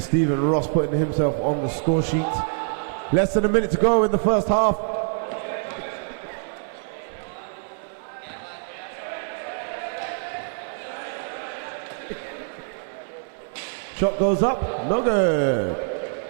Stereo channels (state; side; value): silent; left; digital silence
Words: Ross putting himself on the score sheet. Less than a minute to go in the first half. Shot goes up, no good.